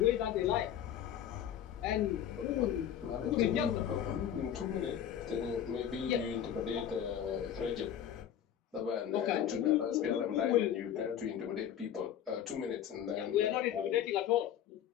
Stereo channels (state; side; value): quieter; right; 9.8 dB